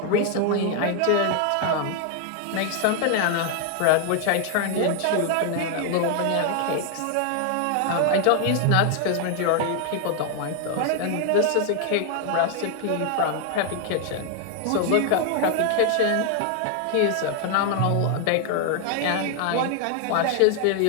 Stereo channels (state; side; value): different; both; correlation 0.00